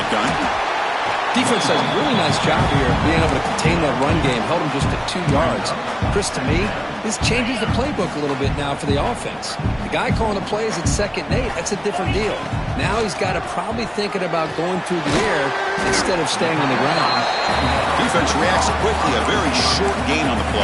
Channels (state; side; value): identical; both; correlation 1.00